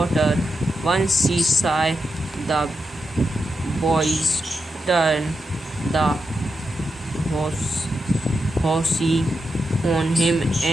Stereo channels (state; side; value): normal; both; correlation 0.87